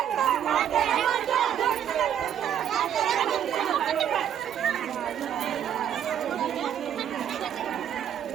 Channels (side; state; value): left; quieter; 9.6 dB